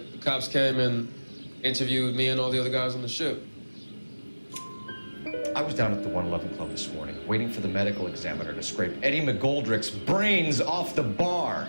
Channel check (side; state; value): both; inverted; correlation -1.00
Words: cops came and interviewed me and all the other guys on the ship. I was down at the 111 Club this morning, waiting for the medical examiner to scrape Eddie McGoldrick's brains off the